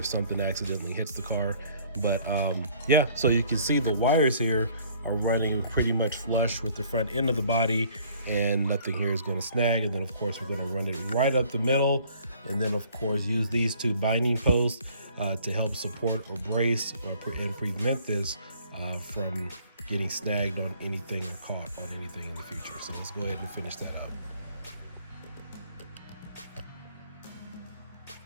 something accidentally hits the car. But yeah, so you can see the wires here are running pretty much flush with the front end of the body, and nothing here is going to snag. And then of course we're going to run it right up the middle, and then of course use these two binding posts to help support or brace and prevent this from getting snagged on anything or caught on anything in the future. So let's go ahead and finish that up.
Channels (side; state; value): both; inverted; correlation -0.57